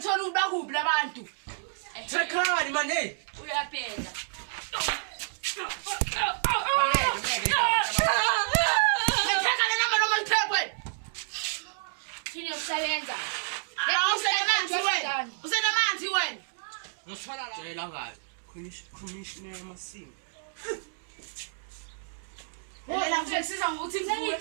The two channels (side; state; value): left; silent; 58 dB below the other